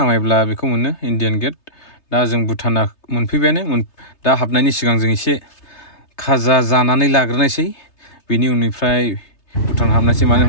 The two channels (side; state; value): right; late; 3.3 ms